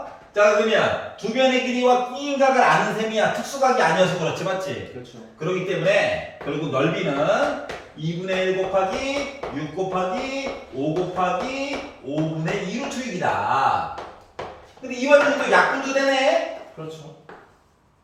자, 그러면 두 변의 길이와 끼인각을 아는 셈이야. 특수각이 아니어서 그렇지, 맞지? 그렇죠. 그렇기 때문에 결국 넓이는 2분의 1 곱하기 6 곱하기 5 곱하기 5분의 2루트 6이다. 근데 이 완전히 또 약분도 되네? 그렇죠.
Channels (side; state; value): both; identical; correlation 1.00